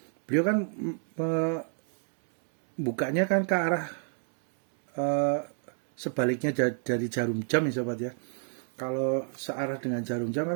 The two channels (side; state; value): left; silent; 58 dB below the other